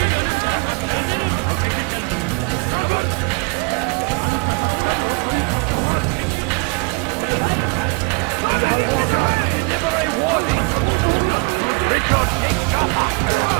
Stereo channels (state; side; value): quieter; left; 33.7 dB